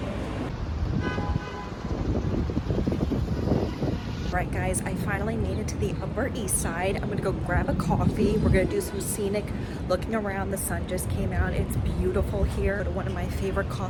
Right guys, I finally made it to the Upper East Side. I'm gonna go grab a coffee. We're gonna do some scenic looking around. The sun just came out. It's beautiful here. One of my favorite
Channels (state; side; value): identical; both; correlation 1.00